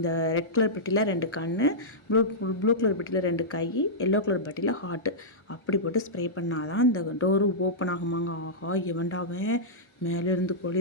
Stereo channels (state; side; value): late; right; 1.4 ms